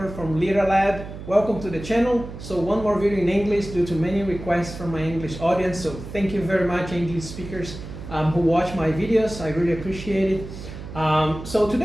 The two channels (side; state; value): right; noise; hum, 11 dB below the sound